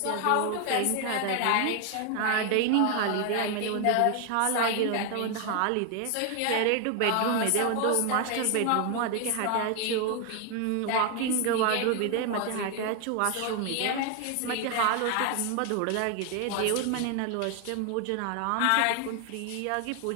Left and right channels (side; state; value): both; different; correlation 0.00